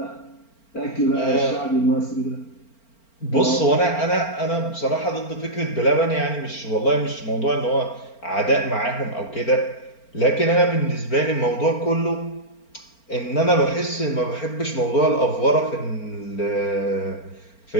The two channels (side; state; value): right; late; 4.4 ms